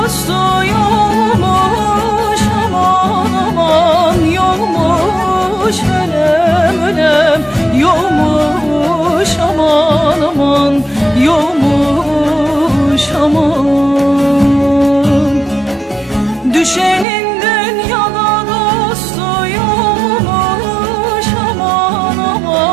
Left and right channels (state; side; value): drops out; left; at 17.1 s